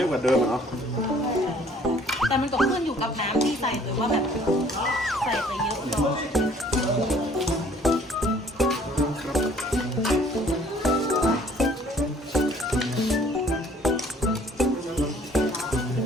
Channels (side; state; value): both; normal; correlation 0.57